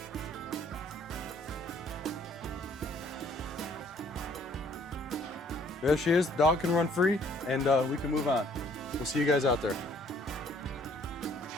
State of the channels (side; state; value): both; normal; correlation 0.61